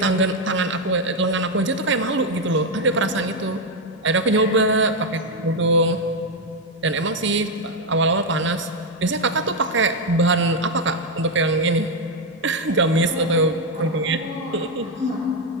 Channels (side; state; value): both; normal; correlation 0.04